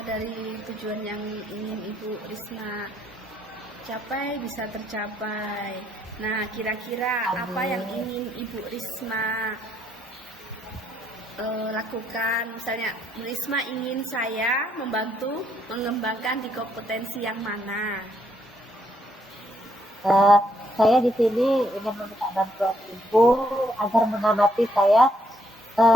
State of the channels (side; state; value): both; normal; correlation 0.72